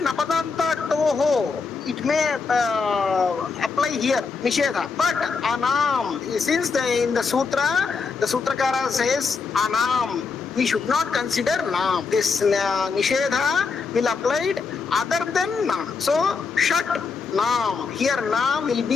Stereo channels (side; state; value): right; quieter; 4.9 dB